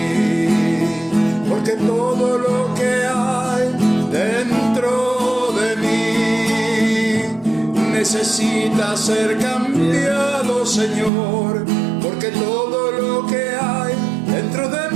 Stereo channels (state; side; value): drops out; left; at 11.1 s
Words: porque todo lo que hay dentro de mí necesita ser cambiado, Señor, porque todo lo que hay dentro de